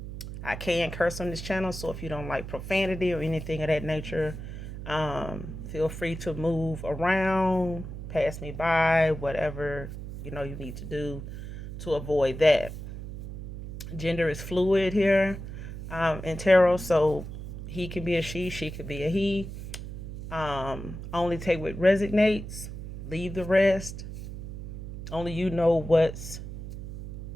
I can curse on this channel, so if you don't like profanity or anything of that nature, feel free to move around, pass me by, whatever you need to do to avoid that. Gender is fluid here in tarot, so he can be a she could be a he. Only take what resonates, leave the rest. Only you know what's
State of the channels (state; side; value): noise; right; hum, 9 dB below the sound